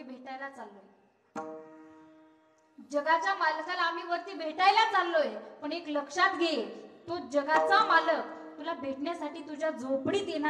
भेटायला चाललोय, जगाच्या मालकाला आम्ही वरती भेटायला चाललोय, पण एक लक्षात घे, तो जगाचा मालक तुला भेटण्यासाठी तुझ्या झोपडीत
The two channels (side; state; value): both; identical; correlation 1.00